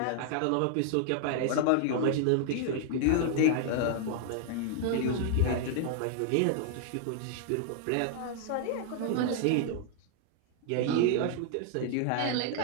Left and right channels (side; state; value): both; different; correlation 0.00